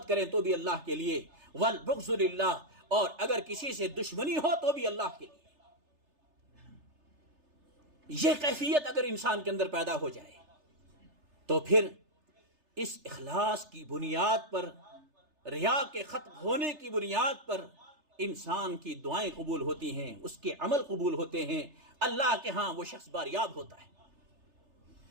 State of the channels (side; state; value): left; late; 3.3 ms